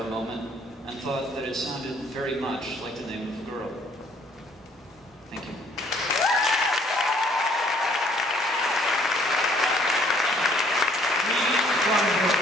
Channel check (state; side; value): normal; both; correlation 0.62